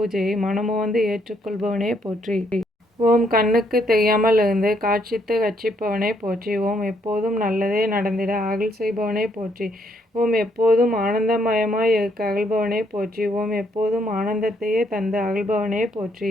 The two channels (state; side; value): normal; both; correlation 0.71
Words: மனமுவந்து ஏற்றுக்கொள்பவனே போற்றி. ஓம் கண்ணுக்கு தெரியாமல் இருந்து காட்சித்து ரட்சிப்பவனே போற்றி. ஓம் எப்போதும் நல்லதே நடந்திட அருள் செய்பவனே போற்றி. ஓம் எப்போதும் ஆனந்தமயமாய் இருக்க அருள்பவனே போற்றி. ஓம் எப்போதும் ஆனந்தத்தையே தந்து அருள்பவனே போற்றி.